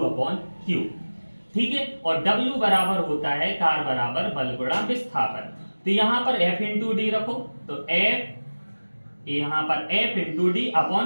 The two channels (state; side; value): inverted; both; correlation -1.00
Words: ठीक है, और W बराबर होता है कार्य बराबर बल गुणा विस्थापन। तो यहां पर F इंटू डी रखो, तो F यहां पर F into D